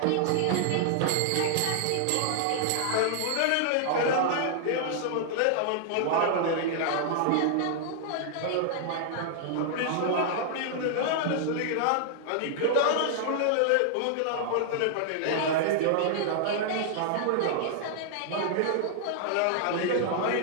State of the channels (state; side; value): different; both; correlation -0.01